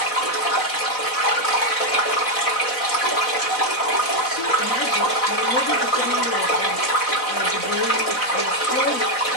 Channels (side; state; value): right; late; 4.0 ms